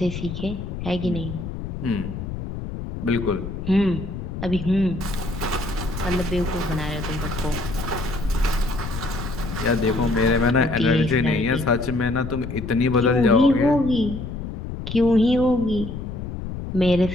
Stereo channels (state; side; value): noise; left; rumble, 7 dB below the sound